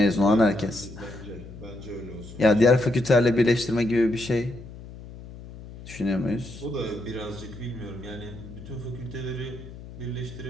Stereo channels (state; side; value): noise; left; hum, 15 dB below the sound